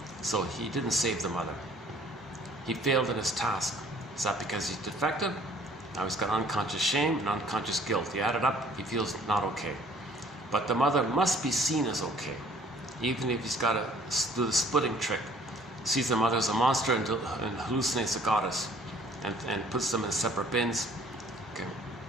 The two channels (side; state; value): both; normal; correlation 0.56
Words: so he didn't save the mother. He failed in his task. Is that because he's defective? Now he's got unconscious shame and unconscious guilt. He added up, he feels not okay. But the mother must be seen as okay, even if he's got to do the splitting trick. Sees the mother as a monster and hallucinates a goddess and puts them in separate bins.